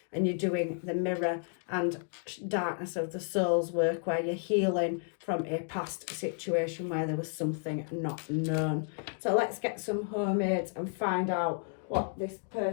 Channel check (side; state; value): right; silent; digital silence